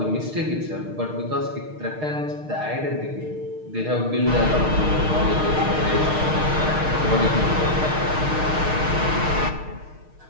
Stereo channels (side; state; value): left; late; 6.5 ms